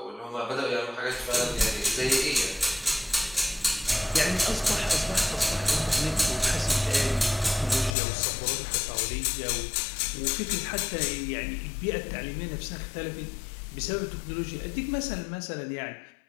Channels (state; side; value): drops out; right; at 8.0 s